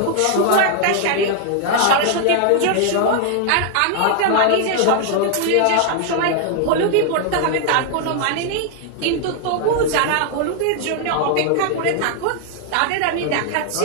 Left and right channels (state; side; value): different; both; correlation 0.00